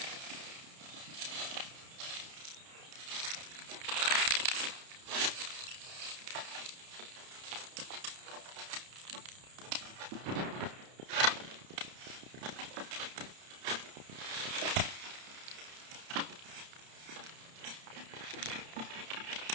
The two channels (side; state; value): left; late; 31 ms